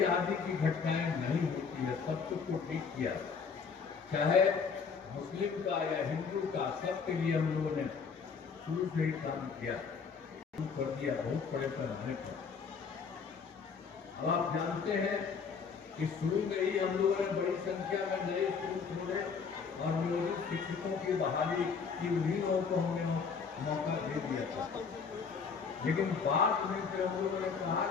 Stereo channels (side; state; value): right; quieter; 5.7 dB